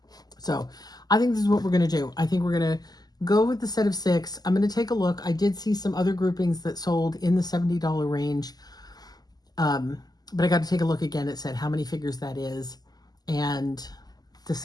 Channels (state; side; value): late; right; 0.19 ms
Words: So I think this is what we're going to do. I think we're going to go with the set of 6. I'm going to take a look. I did see some other groupings that sold in the $70 range. But I got to take a look again. It said how many figures that is and